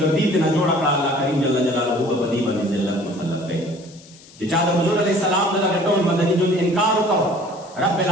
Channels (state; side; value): noise; left; hiss, 23 dB below the sound